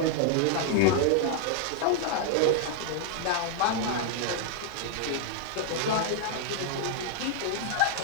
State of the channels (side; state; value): both; different; correlation 0.00